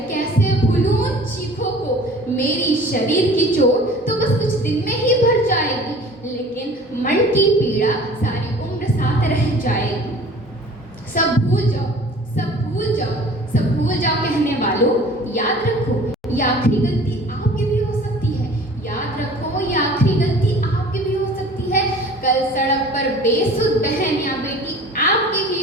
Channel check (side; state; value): both; normal; correlation 0.45